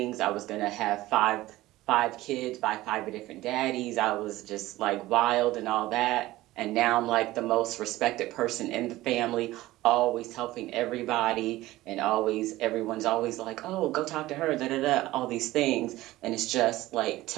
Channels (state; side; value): quieter; left; 17.2 dB